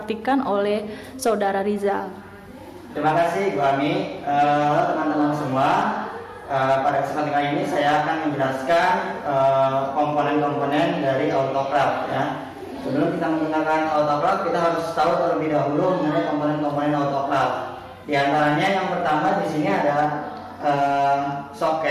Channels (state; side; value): identical; both; correlation 1.00